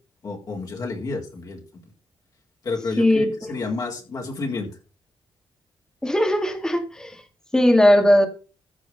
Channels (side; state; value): both; normal; correlation 0.93